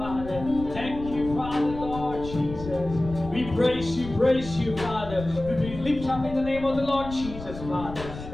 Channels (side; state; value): left; noise; rumble, 12 dB below the sound